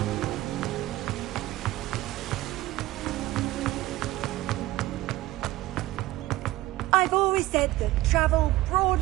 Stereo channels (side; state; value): left; quieter; 17.3 dB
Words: I've always said that travel